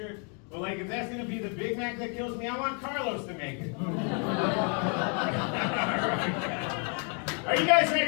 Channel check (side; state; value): right; quieter; 38.7 dB